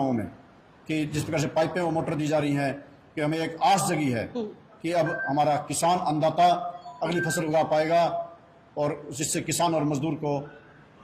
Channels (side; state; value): both; identical; correlation 1.00